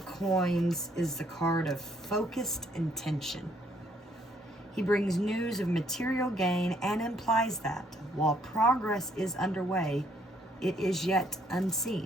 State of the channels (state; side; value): normal; both; correlation 0.67